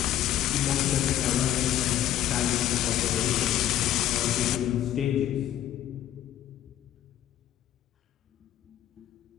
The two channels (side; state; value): right; quieter; 11.9 dB